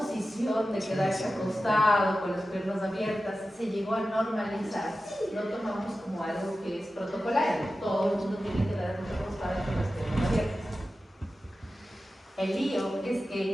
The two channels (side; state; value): both; normal; correlation 0.94